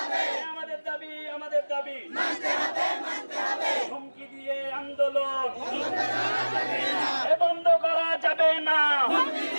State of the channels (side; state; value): both; inverted; correlation -1.00